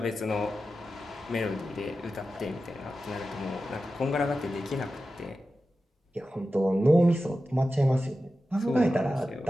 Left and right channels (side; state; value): both; normal; correlation 0.93